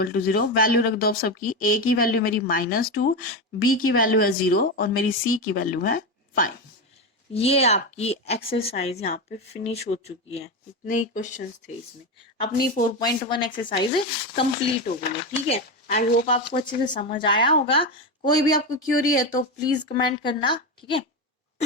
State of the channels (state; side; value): normal; both; correlation 0.15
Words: 0। वैल्यू रख दो अब सबकी। a की वैल्यू मेरी -2, b की वैल्यू है 0 और मेरी c की वैल्यू है 5। ये आपकी एक्सरसाइज यहाँ पे फिनिश हो चुकी है। इतने ही क्वेश्चंस थे इसमें। अपनी 4.1 एक्सरसाइज कंप्लीट हो गई है, ठीक है। आई होप आपको अच्छे से समझ आया होगा। कोई भी आपको क्यूरी है तो प्लीज कमेंट करना, ठीक है।